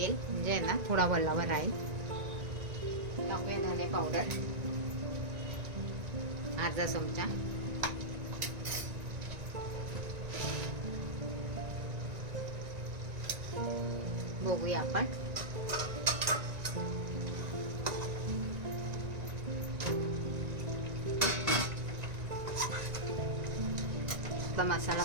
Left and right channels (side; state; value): left; late; 1.9 ms